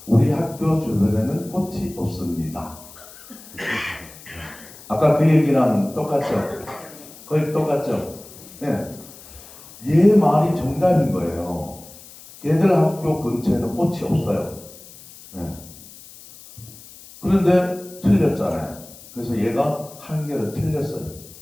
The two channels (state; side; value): noise; left; hiss, 19 dB below the sound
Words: 우리 학교 주변에는 꽃이 없습니다. 아까 그 얘기랑 똑같죠? 거의 똑같죠? 네. 얘 말이 정답인 거예요. 걔들 학교 근처에는 꽃이 없어요. 네. 그런데 틀렸잖아요. 그래서 얘가 한 개를 틀렸어요.